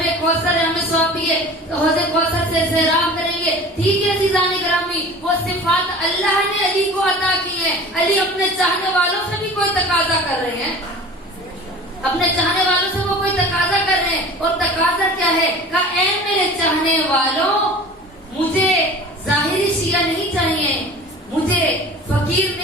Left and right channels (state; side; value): normal; both; correlation 0.40